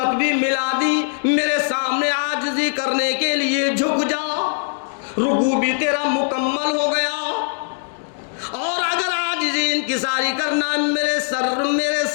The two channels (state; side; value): silent; right; digital silence